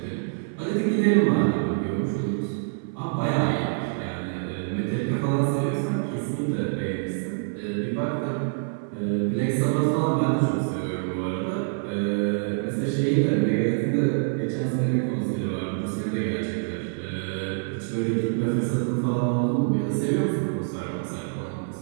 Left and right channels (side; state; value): left; silent; 61 dB below the other